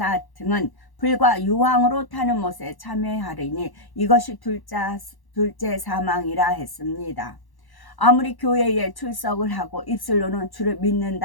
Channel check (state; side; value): late; right; 1.1 ms